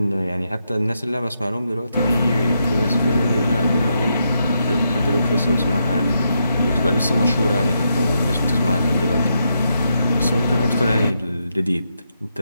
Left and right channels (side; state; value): both; inverted; correlation -0.81